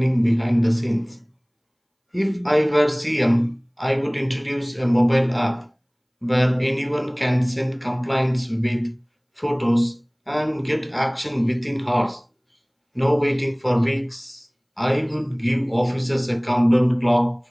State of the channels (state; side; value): identical; both; correlation 1.00